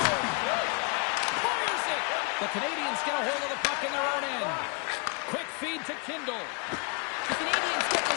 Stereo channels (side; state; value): right; quieter; 34.9 dB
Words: Fires it. The Canadians get a hold of the puck in their own end. Quick feed to Kindle. The Canadians get